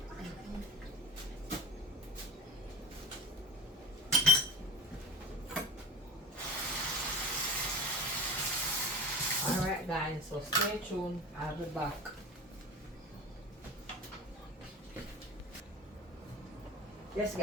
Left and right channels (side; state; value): both; normal; correlation 0.34